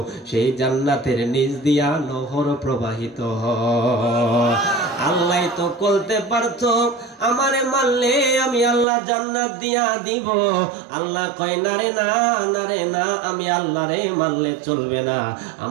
সেই জান্নাতের নিচ দিয়া নহর প্রবাহিত হয়। আল্লাহ তো বলতে পারতো আমারে মানলে আমি আল্লাহ জান্নাত দিয়া দিব। আল্লাহ কয় না রে না, না রে না, আমি আল্লাহরে মানলে চলবে না,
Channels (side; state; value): left; drops out; at 8.8 s